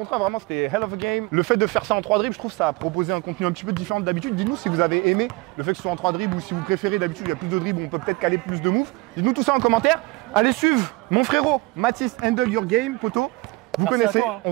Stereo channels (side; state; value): left; quieter; 23.1 dB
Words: vraiment, c'était hell of a game. Le fait de faire ça en 3 dribbles, je trouve ça a proposé un contenu un petit peu différent d'habitude. Dites-nous si vous avez aimé le fait que ce soit en 3 dribbles ou si vous préférez d'habitude, il y a plus de dribbles, on peut peut-être caler plus de moves. Dites-nous tout ça en commentaire. Allez suivre mon frérot Mathis Handle Your Game, poto. Vous Merci à connaissez, toi, hein. on